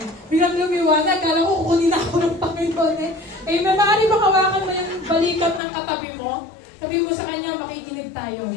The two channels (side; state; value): right; drops out; at 5.6 s